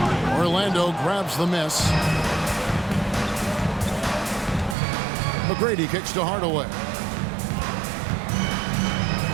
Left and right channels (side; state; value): left; drops out; at 4.8 s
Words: Orlando grabs the miss. McGrady kicks to Hardaway.